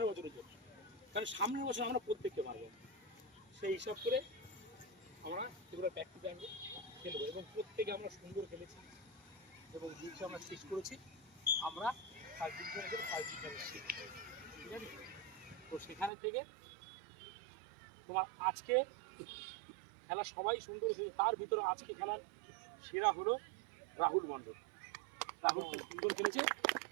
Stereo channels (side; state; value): left; drops out; at 16.1 s